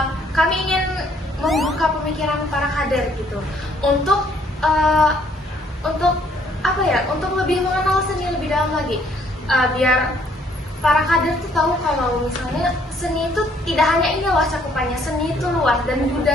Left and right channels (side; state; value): both; normal; correlation 0.65